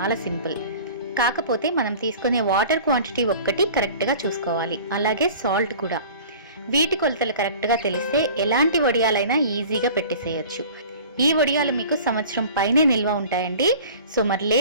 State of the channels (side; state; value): both; inverted; correlation -0.43